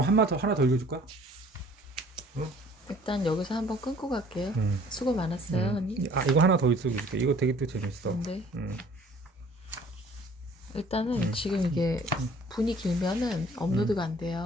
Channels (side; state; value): both; normal; correlation 0.54